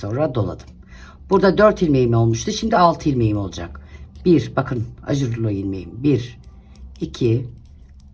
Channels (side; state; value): both; identical; correlation 1.00